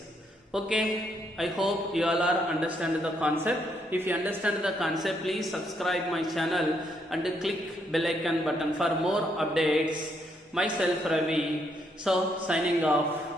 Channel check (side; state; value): both; normal; correlation 0.74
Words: Okay, I hope you all are understand the concept. If you understand the concept, please subscribe my channel and click bell icon button for more updates. Myself Ravi. So signing